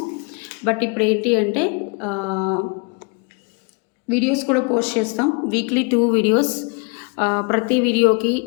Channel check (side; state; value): right; quieter; 33.8 dB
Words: బట్ ఇప్పుడు ఏంటి అంటే వీడియోస్ కూడా పోస్ట్ చేస్తాం. Weekly 2 videos. ప్రతి వీడియోకి